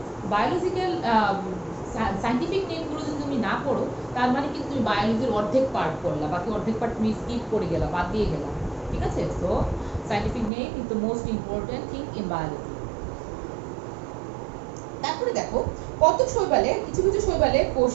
বায়োলজিক্যাল সাইন্টিফিক নেমগুলো যদি তুমি না পড়ো, তার মানে কিন্তু তুমি বায়োলজির অর্ধেক পার্ট পড়লা, বাকি অর্ধেক পার্ট তুমি স্কিপ করে গেলা, বাদ দিয়ে গেলা, ঠিক আছে। So scientific name is the most important thing in biology. তারপরে দেখো, কত শৈবালে, কিছু কিছু শৈবালে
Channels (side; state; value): left; drops out; at 10.5 s